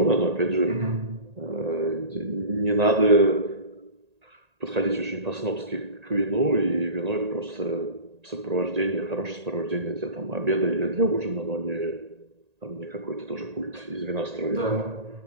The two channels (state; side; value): late; left; 1.8 ms